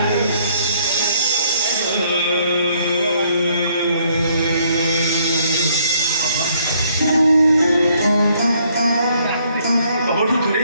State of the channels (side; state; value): both; inverted; correlation -0.66